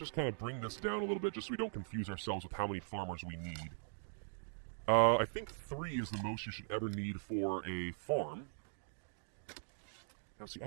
kind of bring this down a little bit just so we don't confuse ourselves with how many farmers we need. I think 3 is the most you should ever need for a farm. Now see, I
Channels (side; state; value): left; silent; digital silence